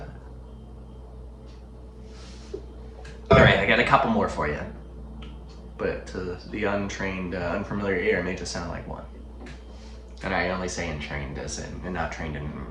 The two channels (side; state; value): both; identical; correlation 1.00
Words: Alright, I got a couple more for you. But to the untrained, unfamiliar ear, it may just sound like one. And I only say untrained as in, and not trained in